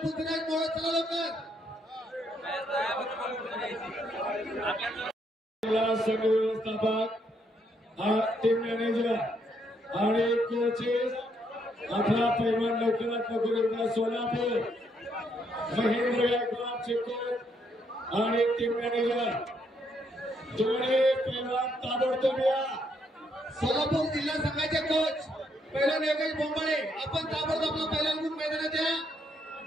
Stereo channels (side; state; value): both; normal; correlation 0.74